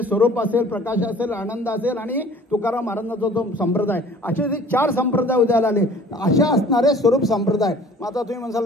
स्वरूप असेल, प्रकाश असेल, आनंद असेल आणि तुकाराम महाराजांचा जो संप्रदाय, असे जे 4 संप्रदाय उदयाला आले. अशा असणारे स्वरूप संप्रदाय. मग आता तुम्ही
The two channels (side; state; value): both; normal; correlation 0.50